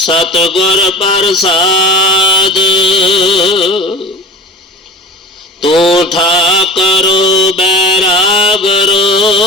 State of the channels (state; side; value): normal; both; correlation 0.35